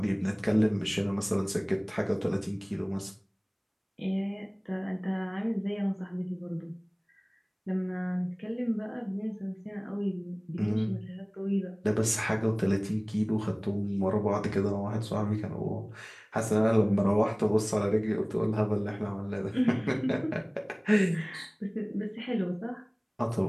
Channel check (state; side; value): identical; both; correlation 1.00